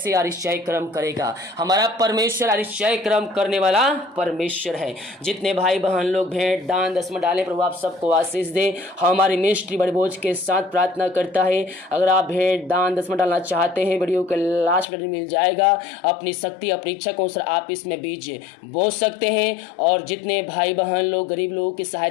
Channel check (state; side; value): drops out; right; at 14.9 s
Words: आरिश्चय कर्म करेगा। हमारा परमेश्वर आरिश्चय कर्म करने वाला परमेश्वर है। जितने भाई बहन लोग भेंट दान दसवां डालें, प्रभु आप सबको आशीष दे। हमारी मिनिस्ट्री बड़े बोझ के साथ प्रार्थना करता है। अगर आप भेंट दान दसवां डालना चाहते हैं, वीडियो के लास्ट में मिल जाएगा। अपनी शक्ति अपनी इच्छा को अनुसार आप इसमें बीज बो सकते हैं। और जितने भाई बहन लोग गरीब लोगों की